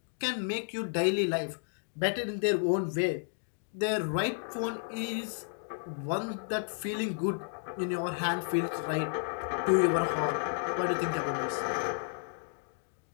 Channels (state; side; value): silent; right; digital silence